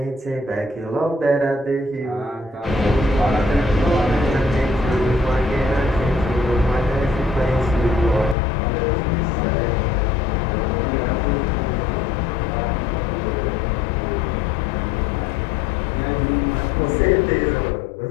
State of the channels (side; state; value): right; drops out; at 8.3 s